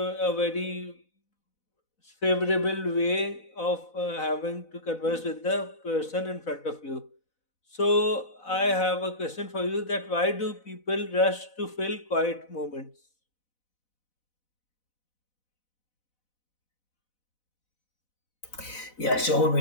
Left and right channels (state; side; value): late; right; 4.0 ms